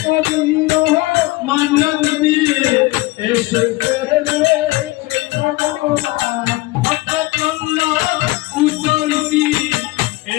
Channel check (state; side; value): quieter; right; 20.5 dB